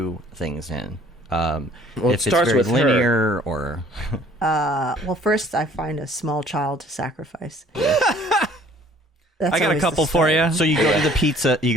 things in. Well, if it it's starts very with linear or... Well, first I find a small child to sacrifice. I got a couple for you. So you go to the pizza. You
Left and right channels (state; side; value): normal; both; correlation 0.55